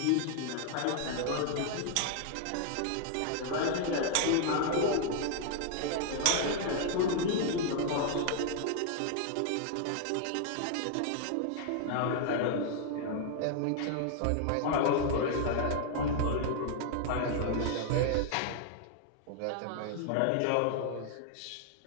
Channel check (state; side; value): different; both; correlation 0.00